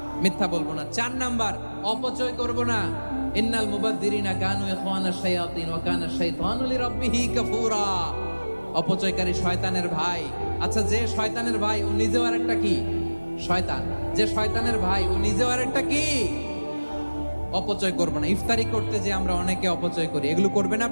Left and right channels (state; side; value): inverted; both; correlation -1.00